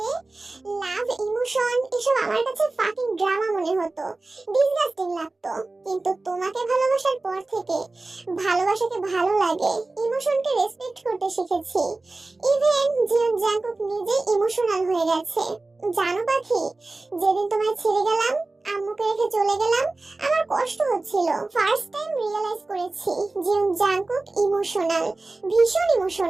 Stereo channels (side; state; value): left; quieter; 3.2 dB